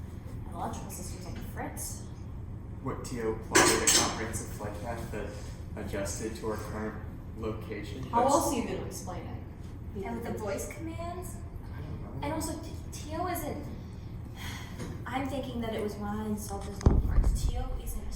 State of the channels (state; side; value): identical; both; correlation 1.00